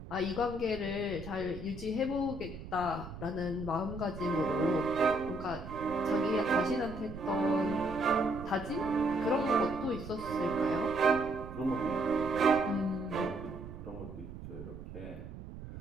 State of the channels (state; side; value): noise; right; rumble, 12 dB below the sound